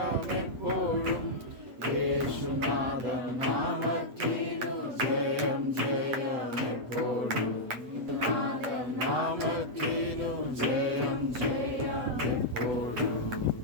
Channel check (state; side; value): late; left; 8.1 ms